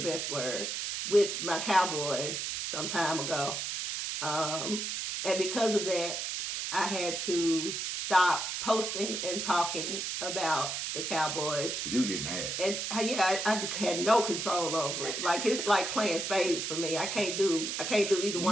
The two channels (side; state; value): right; noise; hiss, 3 dB below the sound